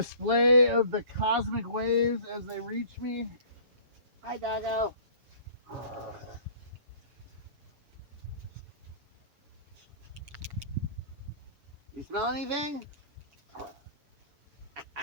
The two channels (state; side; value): late; left; 7.2 ms